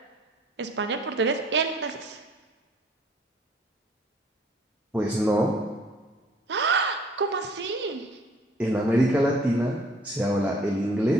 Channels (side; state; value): both; normal; correlation 0.56